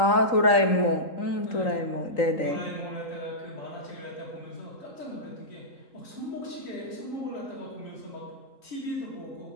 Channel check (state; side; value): late; right; 3.8 ms